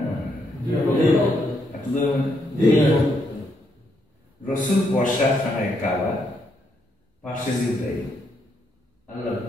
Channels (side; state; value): both; normal; correlation 0.76